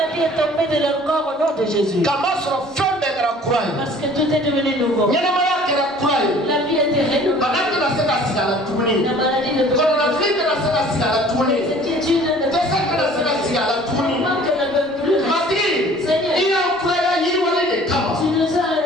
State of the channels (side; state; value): both; normal; correlation 0.51